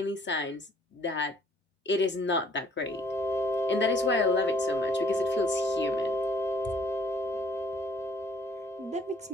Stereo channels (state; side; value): normal; both; correlation 0.60